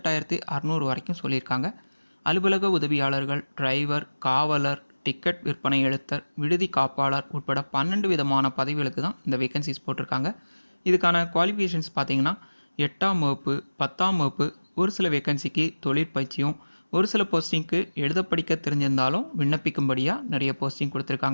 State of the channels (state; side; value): inverted; both; correlation -1.00